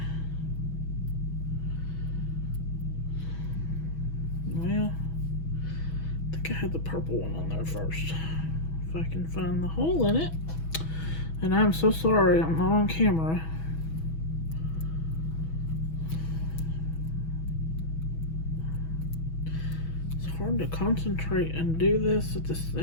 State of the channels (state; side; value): late; right; 6.2 ms